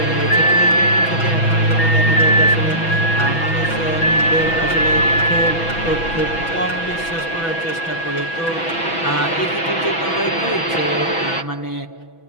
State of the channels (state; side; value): late; right; 6.1 ms